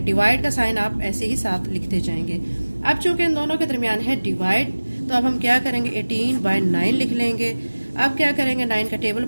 डिवाइड का साइन आप ऐसे ही साथ लिखते जाएंगे। अब चूंकि इन दोनों के दरमियान है डिवाइड, तो अब हम क्या करेंगे, 18 बाय 9 लिख लेंगे। अब क्या करेंगे, 9 का टेबल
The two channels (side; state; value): both; inverted; correlation -1.00